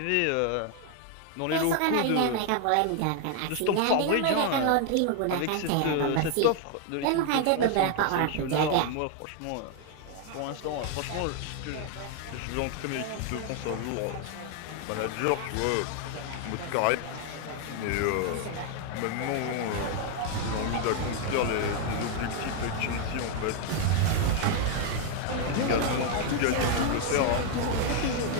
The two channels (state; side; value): different; both; correlation 0.00